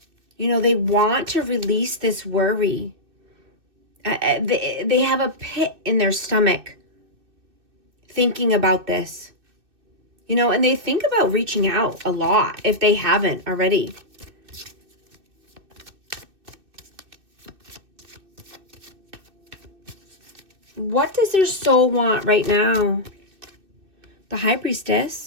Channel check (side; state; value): left; late; 2.6 ms